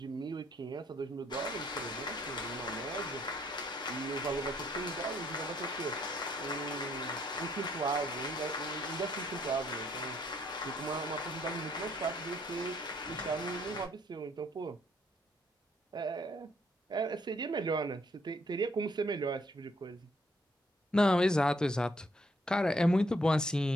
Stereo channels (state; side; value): normal; both; correlation 0.68